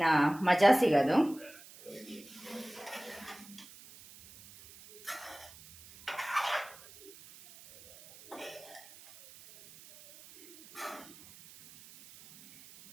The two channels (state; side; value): noise; right; hiss, 20 dB below the sound